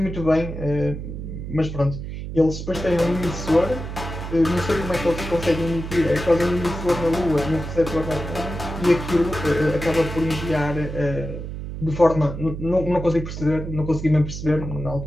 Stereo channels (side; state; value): right; noise; hum, 7 dB below the sound